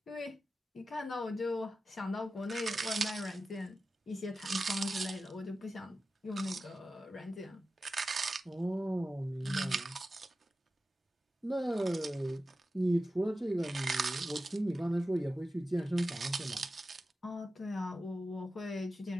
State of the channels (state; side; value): normal; both; correlation 0.93